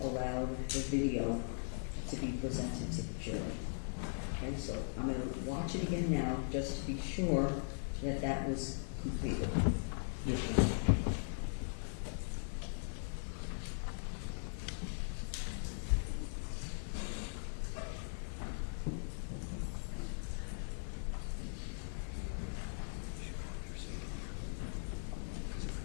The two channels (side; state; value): right; silent; digital silence